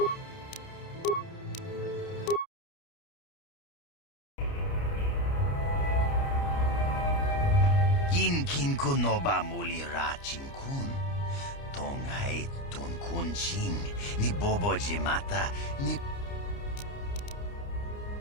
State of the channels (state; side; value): late; right; 29 ms